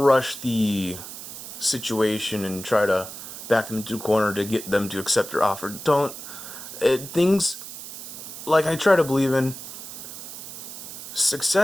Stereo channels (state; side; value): noise; right; hiss, 11 dB below the sound